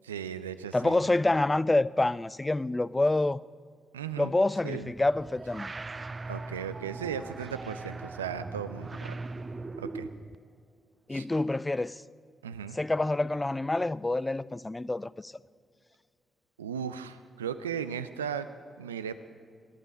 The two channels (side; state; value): both; normal; correlation 0.84